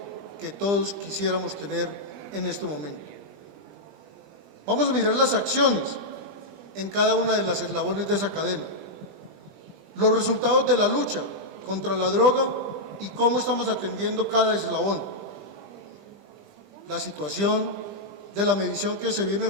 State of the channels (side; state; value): left; late; 20 ms